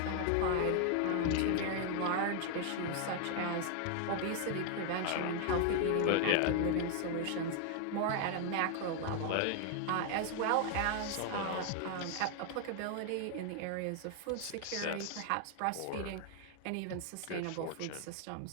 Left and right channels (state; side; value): different; both; correlation 0.00